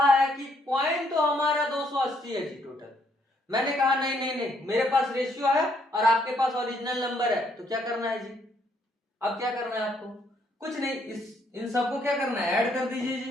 है कि क्वाइन तो हमारा 280 है जी टोटल। मैंने कहा नहीं नहीं नहीं, मेरे पास रेशियो है और आपके पास ओरिजिनल नंबर है, तो क्या करना है जी, अब क्या करना है आपको, कुछ नहीं, इन सबको क्या करना है, ऐड कर दीजिए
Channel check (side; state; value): both; normal; correlation 0.70